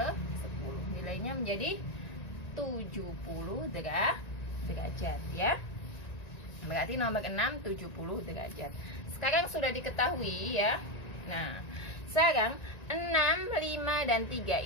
Nilainya menjadi 70 derajat ya. Berarti nomor 6 70 derajat. Sekarang sudah diketahui ya. Nah, sekarang 6, 5 dan 3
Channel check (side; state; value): right; late; 1.9 ms